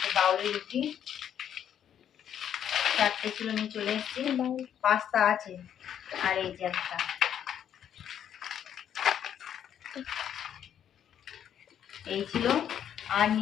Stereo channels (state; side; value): quieter; right; 9.5 dB